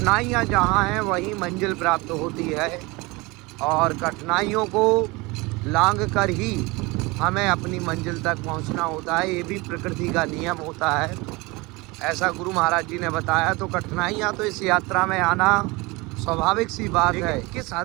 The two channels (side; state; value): left; quieter; 24.2 dB